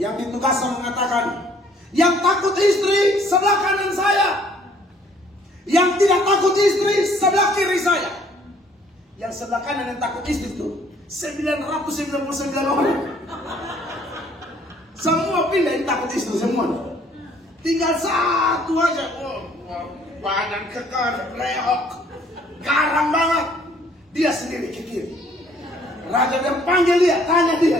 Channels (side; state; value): both; normal; correlation 0.61